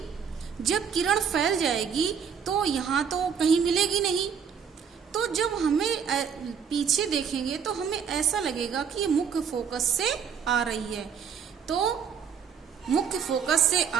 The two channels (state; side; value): quieter; left; 7.1 dB